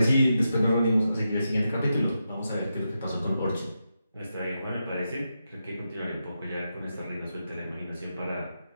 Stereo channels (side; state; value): both; inverted; correlation -0.87